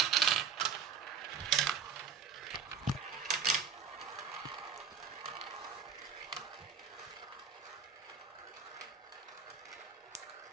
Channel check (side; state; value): left; quieter; 6.2 dB